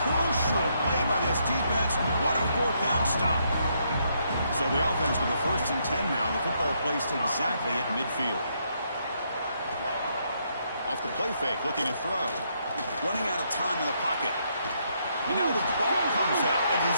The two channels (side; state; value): both; inverted; correlation -0.75